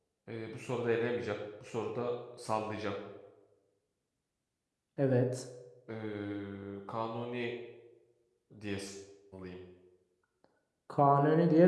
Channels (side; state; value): both; identical; correlation 1.00